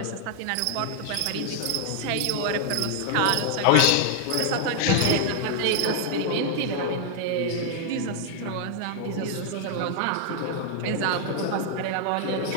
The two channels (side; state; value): both; different; correlation 0.00